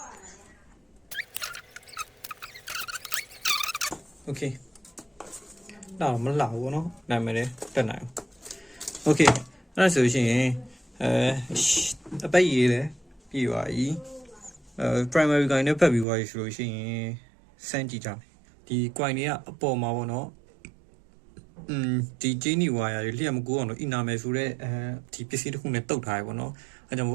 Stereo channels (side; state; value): left; drops out; at 16.1 s